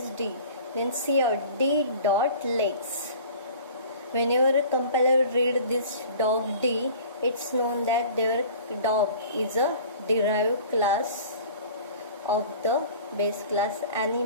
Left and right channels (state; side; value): inverted; both; correlation -0.45